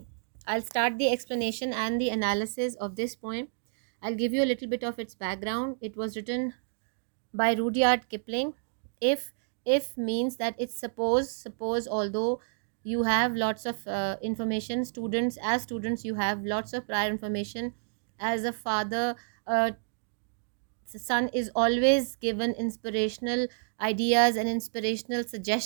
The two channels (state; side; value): silent; left; digital silence